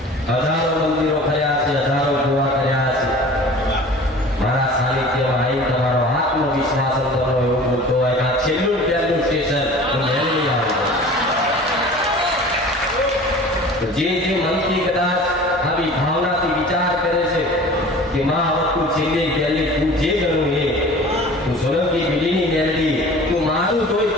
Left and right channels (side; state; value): both; normal; correlation 0.42